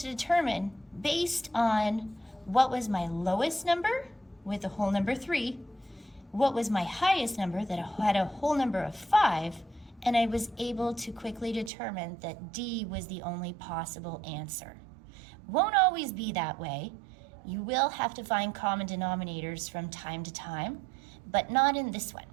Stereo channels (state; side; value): drops out; left; at 11.7 s